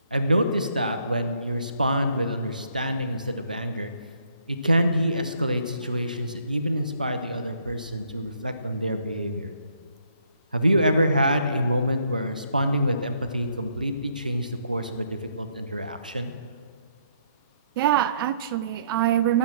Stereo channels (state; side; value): inverted; both; correlation -0.68